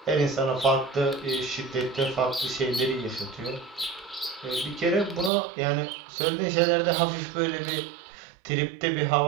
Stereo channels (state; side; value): drops out; left; at 5.3 s